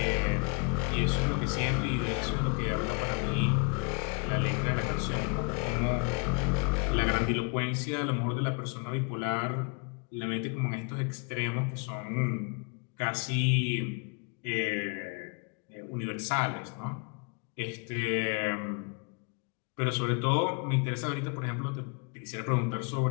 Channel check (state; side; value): quieter; right; 36.7 dB